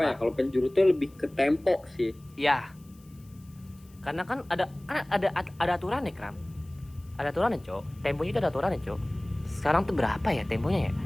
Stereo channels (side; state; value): left; noise; hiss, 29 dB below the sound